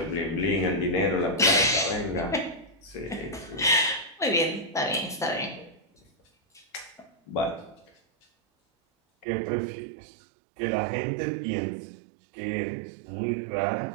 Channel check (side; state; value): left; drops out; at 9.2 s